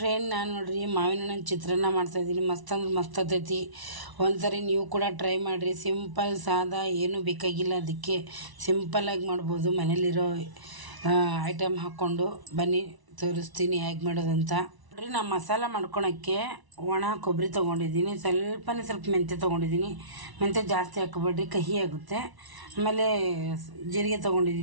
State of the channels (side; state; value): left; late; 1.0 ms